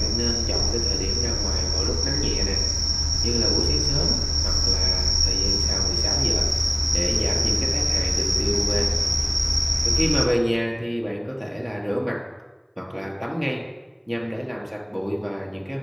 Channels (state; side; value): identical; both; correlation 1.00